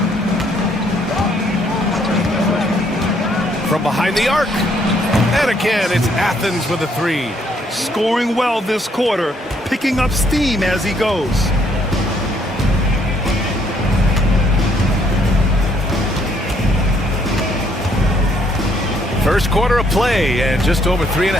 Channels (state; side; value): normal; both; correlation 0.69